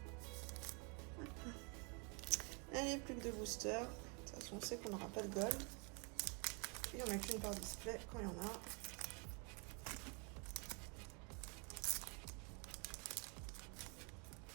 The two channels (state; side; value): quieter; left; 34.8 dB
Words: Allez, plus que 2 boosters. De toute façon, on sait qu'on n'aura pas de gold. Il n'y en a qu'une par display quand il y en a.